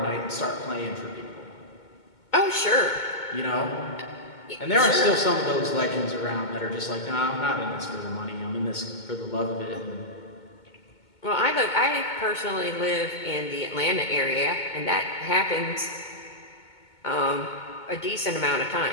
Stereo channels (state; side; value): late; right; 2.2 ms